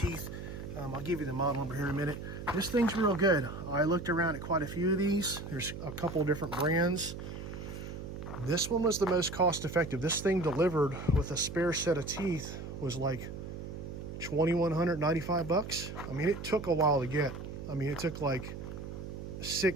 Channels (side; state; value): right; noise; hum, 9 dB below the sound